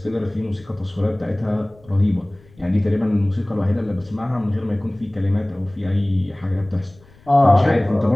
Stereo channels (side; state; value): left; noise; rumble, 27 dB below the sound